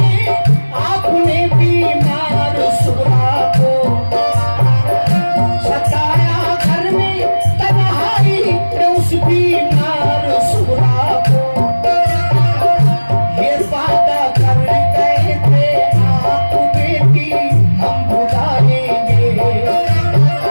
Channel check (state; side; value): inverted; both; correlation -1.00